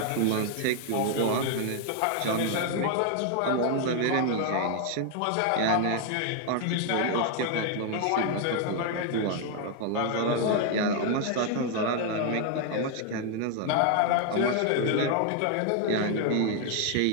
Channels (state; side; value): different; both; correlation 0.00